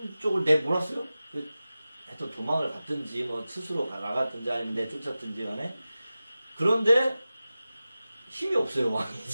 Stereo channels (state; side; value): inverted; both; correlation -0.95